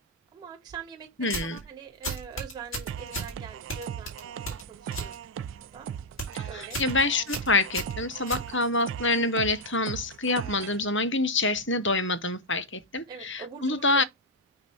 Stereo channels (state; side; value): normal; both; correlation -0.03